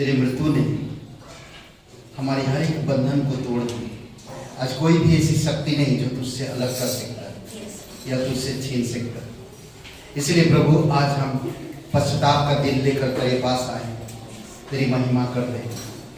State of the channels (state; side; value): identical; both; correlation 1.00